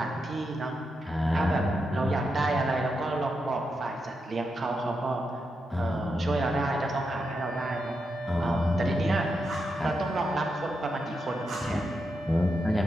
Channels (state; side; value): normal; both; correlation 0.85